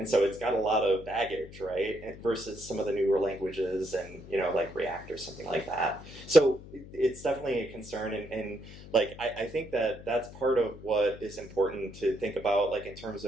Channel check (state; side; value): noise; left; hum, 16 dB below the sound